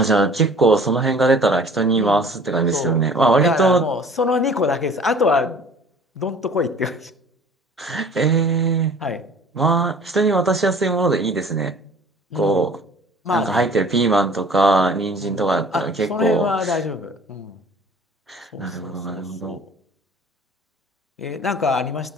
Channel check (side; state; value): both; normal; correlation 0.49